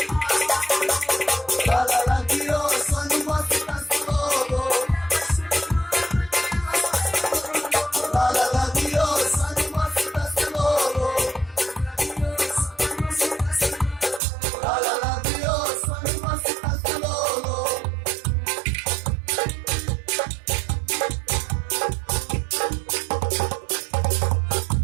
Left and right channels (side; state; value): left; drops out; at 14.2 s